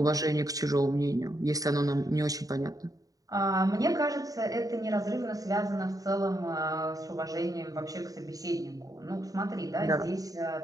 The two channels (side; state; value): left; late; 0.18 ms